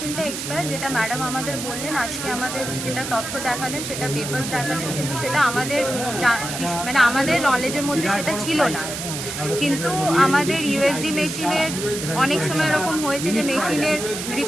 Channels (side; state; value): right; noise; hiss, 6 dB below the sound